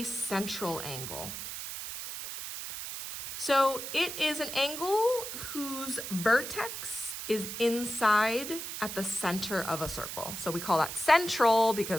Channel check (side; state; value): right; noise; hiss, 7 dB below the sound